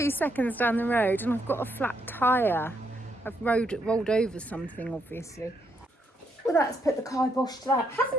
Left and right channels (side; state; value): both; normal; correlation 0.76